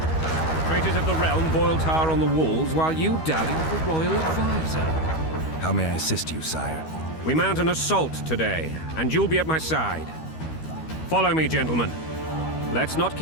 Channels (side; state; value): right; late; 13 ms